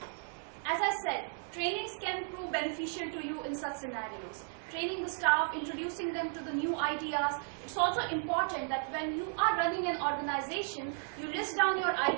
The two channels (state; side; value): silent; left; 55 dB below the other